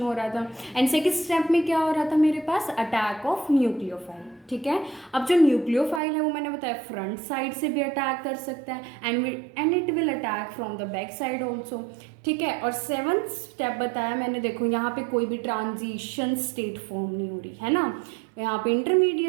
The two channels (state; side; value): drops out; left; at 6.0 s